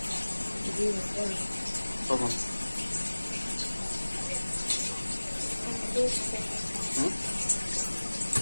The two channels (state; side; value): inverted; both; correlation -1.00